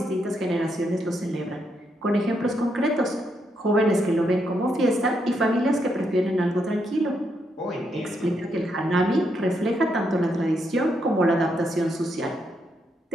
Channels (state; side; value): normal; both; correlation 0.79